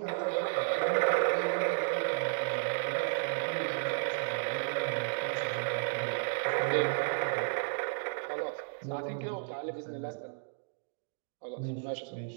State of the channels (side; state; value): left; silent; digital silence